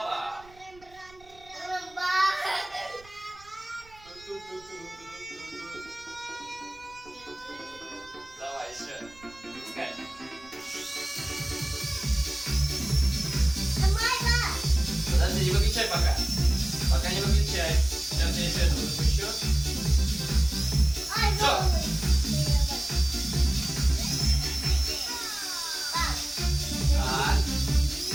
Давай еще. Запускай. Подожди, не выключай пока. Пока не выключай. Сейчас я еще этого запущу. Так.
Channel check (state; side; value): noise; right; rumble, 26 dB below the sound